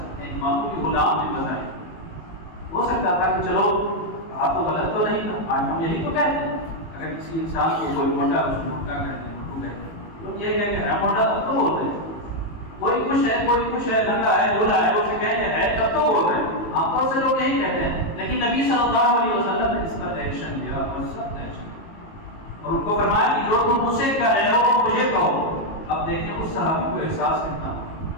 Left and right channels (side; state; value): right; late; 18 ms